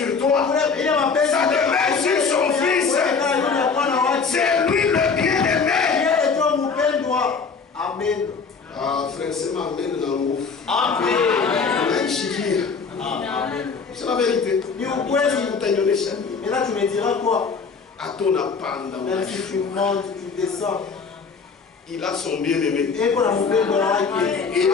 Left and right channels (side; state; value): right; quieter; 5.2 dB